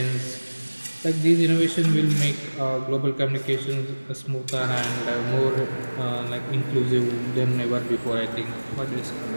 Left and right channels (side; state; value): both; inverted; correlation -1.00